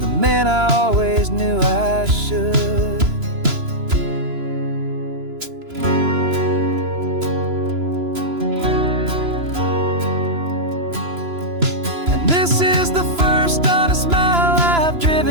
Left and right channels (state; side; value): late; left; 3.0 ms